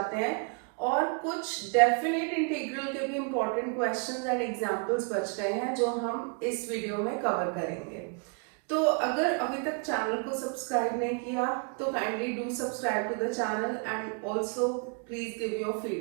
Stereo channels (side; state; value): left; quieter; 36.7 dB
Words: हैं। और कुछ डेफिनेट इंटीग्रल के भी इंपॉर्टेंट क्वेश्चंस एंड एग्जांपल्स बच गए हैं जो हम इस वीडियो में कवर करेंगे। तो अगर अभी तक चैनल को सब्सक्राइब नहीं किया तो kindly do subscribe to the channel and also please give your